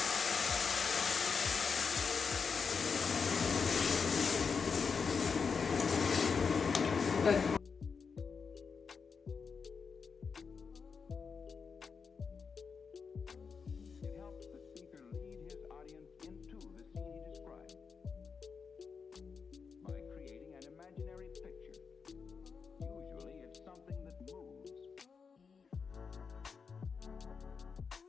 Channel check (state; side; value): quieter; right; 5.6 dB